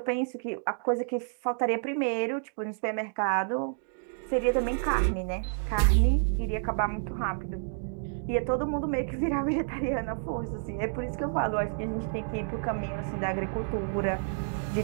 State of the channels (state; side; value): silent; left; digital silence